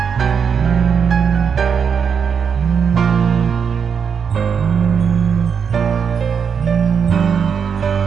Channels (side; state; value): left; quieter; 6.8 dB